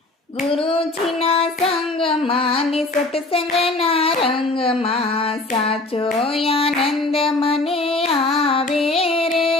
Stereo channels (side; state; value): right; quieter; 3.0 dB